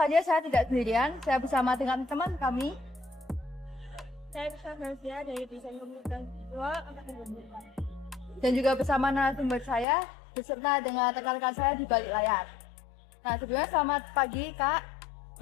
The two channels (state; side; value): drops out; right; at 9.9 s